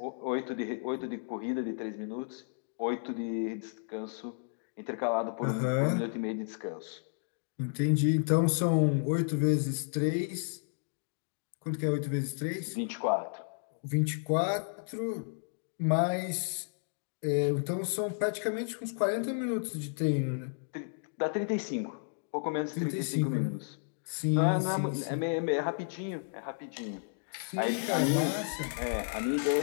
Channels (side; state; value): right; silent; digital silence